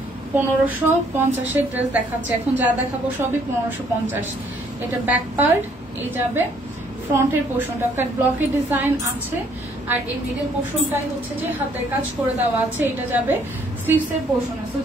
1550-এর ড্রেস দেখাচ্ছি। এখন যা দেখাবো সবই 1550। এটা ব্যাক পার্ট, এই যাবে ফ্রন্টের পোর্শনটা কাট ব্লকের ডিজাইন আছে, আর এই মিডল পোর্শনটাই হচ্ছে যে হাতের কাজ করে দেওয়া আছে। এটা যাবে স্লিভসের পোর্শনে। সো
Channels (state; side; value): normal; both; correlation 0.64